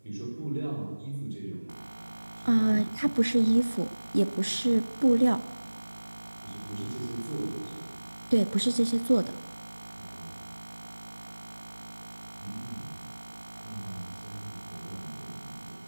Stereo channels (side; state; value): both; inverted; correlation -1.00